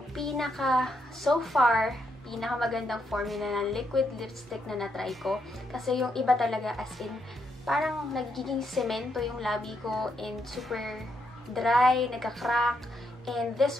so far, pinakamagandang formula ng liquid lipstick na natry ko. Kasi yung iba talaga, as in parang nagiging semento yung labi ko and super dry, nagka-crack. And this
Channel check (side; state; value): both; normal; correlation 0.78